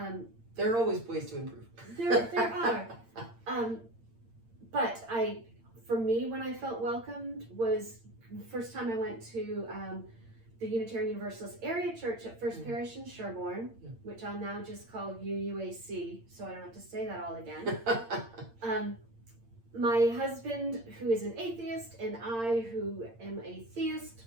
There are always ways to improve. There are. But for me, when I felt welcomed was the first time I went to the Unitarian Universalist area church at First Parish in Sherborne, which I'll now just call UUAC, so I don't have to say that all again. My husband, who is an atheist, and I, who am a theist,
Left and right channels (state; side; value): late; left; 8.8 ms